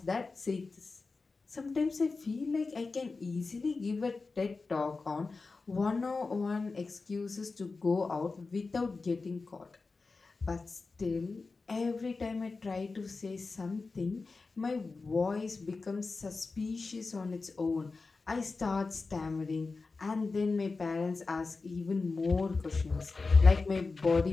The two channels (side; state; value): right; quieter; 4.0 dB